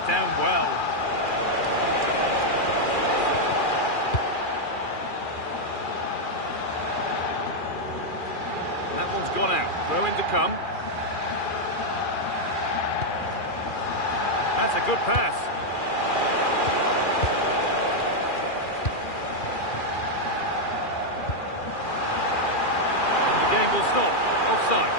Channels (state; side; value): late; right; 2.4 ms